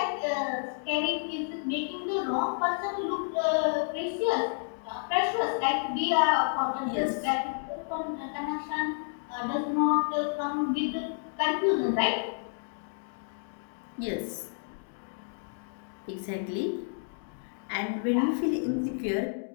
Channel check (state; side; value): silent; right; digital silence